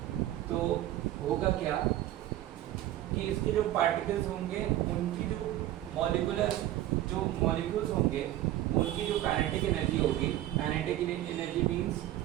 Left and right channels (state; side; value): quieter; left; 14.0 dB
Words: तो होगा क्या कि इसके जो पार्टिकल्स होंगे उनकी जो मॉलिक्यूल्स होंगे उनकी जो काइनेटिक एनर्जी होगी, काइनेटिक एनर्जी